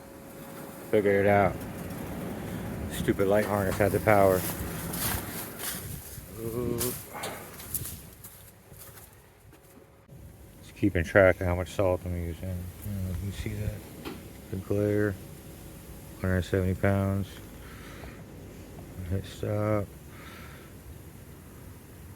Figured it out. Stupid light harness had the power. Ooh. Just keeping track of how much salt I'm using. You see that? The glare. 170 pounds. Hit stop.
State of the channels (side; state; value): both; identical; correlation 1.00